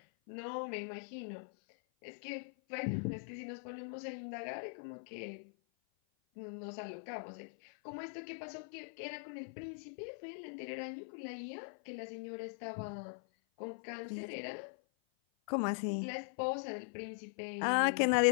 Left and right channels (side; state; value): right; silent; 50 dB below the other